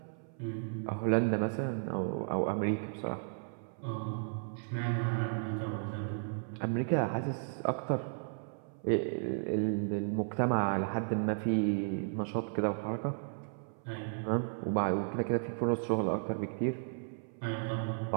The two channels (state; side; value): silent; left; 55 dB below the other